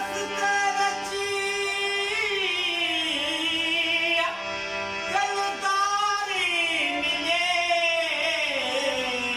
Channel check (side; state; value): both; identical; correlation 1.00